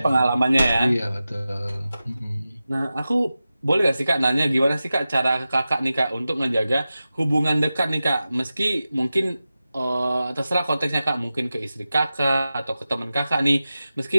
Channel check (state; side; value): inverted; both; correlation -0.94